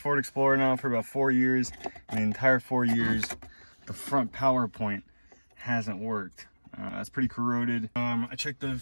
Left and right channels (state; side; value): inverted; both; correlation -1.00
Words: Explorer now for about 4 years. And the entire 4 years, the front power point hasn't worked. It's pretty corroded. I checked the